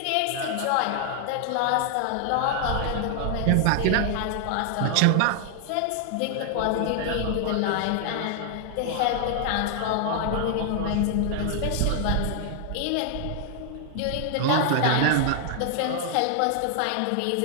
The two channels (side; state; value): both; different; correlation 0.00